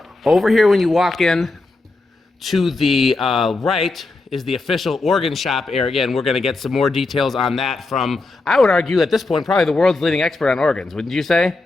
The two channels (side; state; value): right; quieter; 3.3 dB